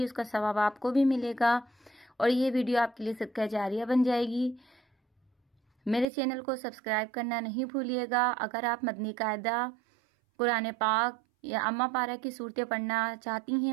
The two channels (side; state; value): left; drops out; at 6.1 s